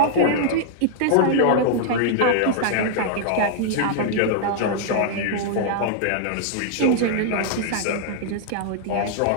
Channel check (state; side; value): different; both; correlation -0.01